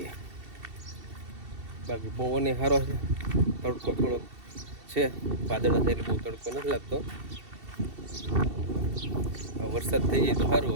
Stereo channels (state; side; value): late; left; 2.7 ms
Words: બાકી પવન સારો છે, તડકો થોડો છે. વાદળા થાય એટલે બહુ તડકો નથી લાગતો. વરસાદ થઈ જાય તો સારું.